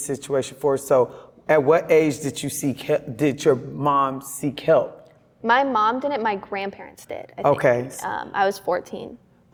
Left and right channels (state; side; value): identical; both; correlation 1.00